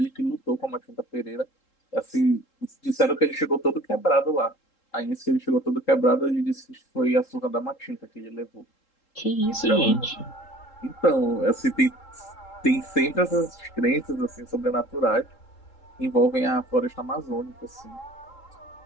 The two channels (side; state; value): right; late; 3.7 ms